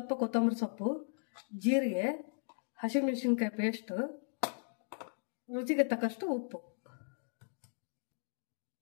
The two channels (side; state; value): right; silent; digital silence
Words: ಕೊತ್ತಂಬರಿ ಸೊಪ್ಪು, ಜೀರಿಗೆ, ಹಸಿಮೆಣಸಿನ್ಕಾಯಿ ಪೇಸ್ಟು, ರುಚಿಗೆ ತಕ್ಕಷ್ಟು ಉಪ್ಪು.